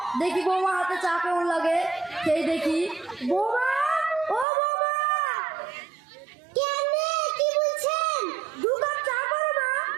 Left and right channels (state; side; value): drops out; left; at 4.5 s